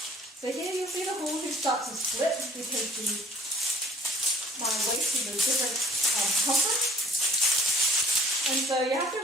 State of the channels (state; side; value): normal; both; correlation 0.55